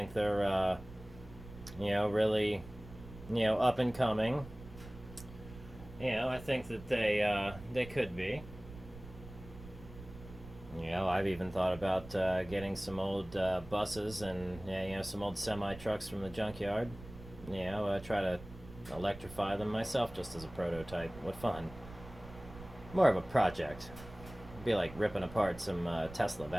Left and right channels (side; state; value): right; noise; rumble, 16 dB below the sound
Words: they're, really, up and coming. I think that they could be. I've even thought about getting some old buses and, some old semi trucks from the junkyard. Try to electrify them myself just as a prototype. What fun. More of a project. It'd be like ripping apart some Tesla